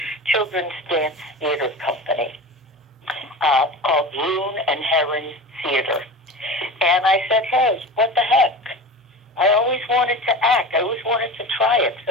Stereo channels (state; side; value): normal; both; correlation 0.31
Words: dance theater company called Loon and Heron Theater. And I said, hey, what the heck? I always wanted to act. I always wanted to try it.